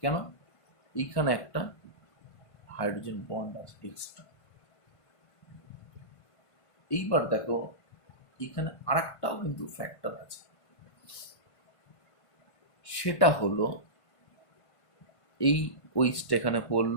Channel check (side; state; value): right; late; 1.5 ms